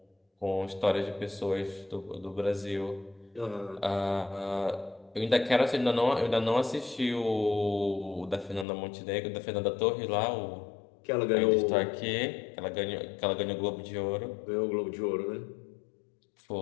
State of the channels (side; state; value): right; drops out; at 8.7 s